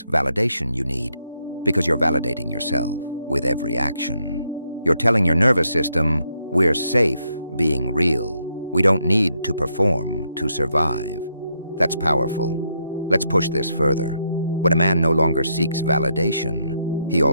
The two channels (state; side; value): inverted; both; correlation -0.78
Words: validation you need, because you're validating yourself with every action. You're telling your nervous system, we're safe being real. We don't need to perform to survive. That's powerful. Let's push this further. When a man no longer seeks validation, he